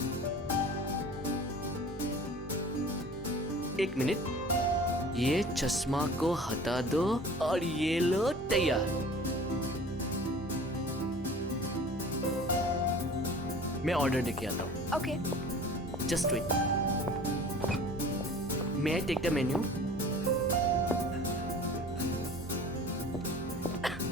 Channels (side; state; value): both; normal; correlation 0.44